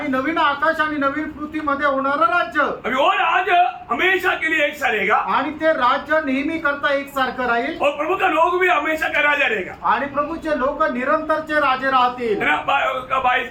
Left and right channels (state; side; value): identical; both; correlation 1.00